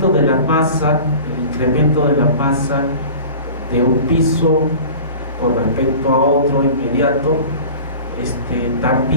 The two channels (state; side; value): inverted; both; correlation -0.39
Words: de la masa de un piso con respecto a otro inmediato,